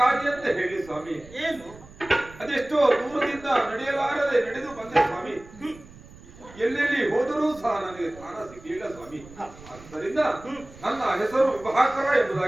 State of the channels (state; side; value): noise; right; rumble, 20 dB below the sound